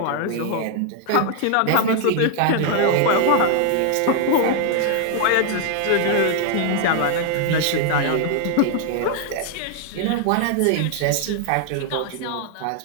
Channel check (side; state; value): both; different; correlation 0.00